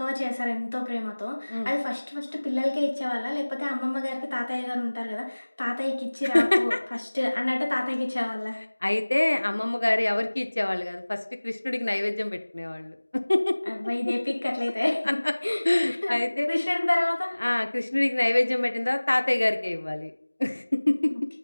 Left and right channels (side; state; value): both; inverted; correlation -1.00